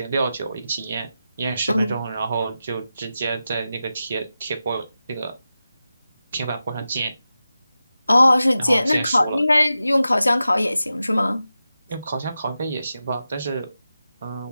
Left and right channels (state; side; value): inverted; both; correlation -0.92